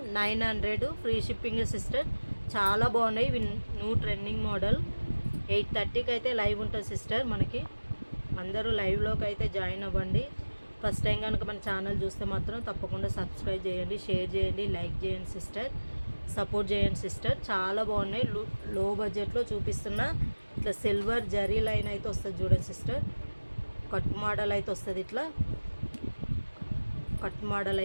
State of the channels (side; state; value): both; inverted; correlation -1.00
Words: 900 ఫ్రీ షిప్పింగే సిస్టర్. చాలా బాగున్నాయి. ఇవి న్యూ ట్రెండింగ్ మోడల్. 8:30కి అయితే లైవ్ ఉంటుంది సిస్టర్ మనకి. అందరూ లైవ్లోకి అయితే జాయిన్ అవ్వండి. ఫస్ట్ టైం కనుక మన ఛానల్ చూస్తే మాత్రం తప్పకుండా సబ్స్క్రైబ్ చేయండి, షేర్ చేయండి, లైక్ చేయండి సిస్టర్, సపోర్ట్ చేయండి సిస్టర్. చాలా బాగున్నాయి. లో బడ్జెట్లో చూపిస్తున్న ఇట్లా సిల్వర్ జరీ లైన్ అయితే వస్తుంది చూడండి సిస్టర్. కట్ మోడల్ అయితే వస్తుంది, ఇట్లా కట్ మోడల్